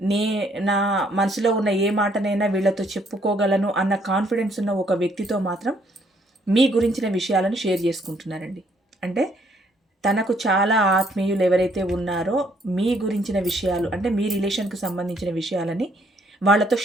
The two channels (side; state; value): both; normal; correlation 0.67